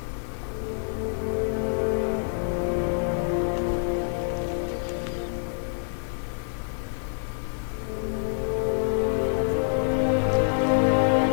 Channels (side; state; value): right; silent; digital silence